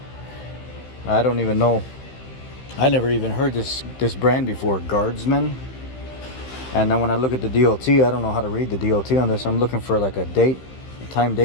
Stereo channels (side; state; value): right; late; 15 ms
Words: I don't even know. I never even heard this brand before, Guardsman. And then when I look at the DOT, I don't know how to read the DOT on this. I'm looking for like a time